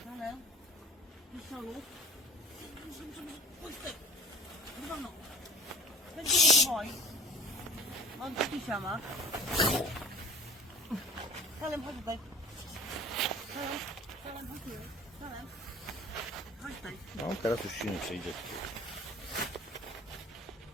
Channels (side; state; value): both; normal; correlation 0.41